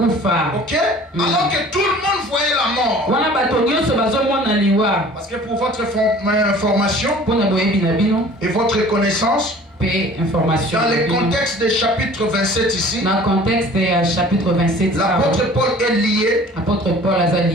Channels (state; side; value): normal; both; correlation 0.47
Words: Ok? Alors que tout le monde voyait la mort. Parce que pour votre information et votre connaissance, information. Dans le contexte du chapitre 27 ici, dans le contexte du chapitre 27, l'apôtre Paul est lié. L'apôtre Paul est